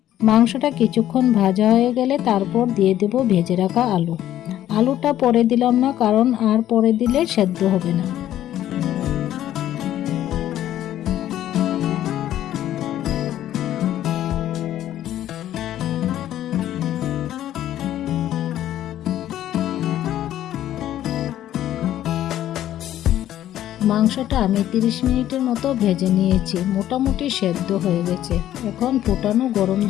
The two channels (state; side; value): quieter; right; 12.3 dB